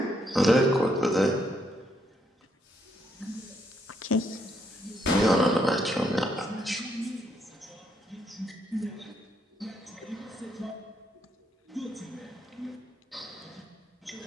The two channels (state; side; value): normal; both; correlation 0.74